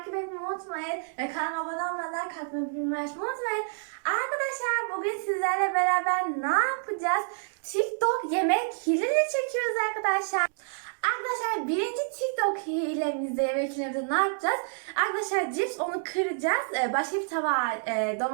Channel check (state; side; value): silent; left; digital silence